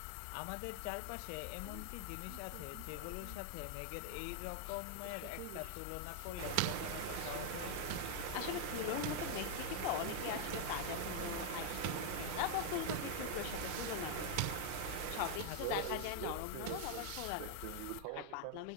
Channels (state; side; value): different; both; correlation 0.00